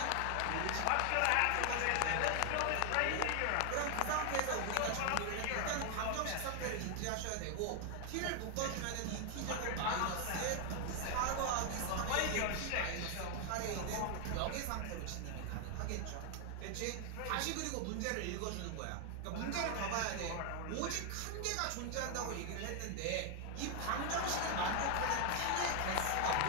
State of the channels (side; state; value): both; different; correlation 0.00